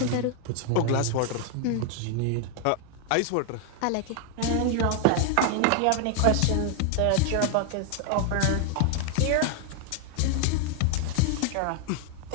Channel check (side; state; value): both; different; correlation 0.00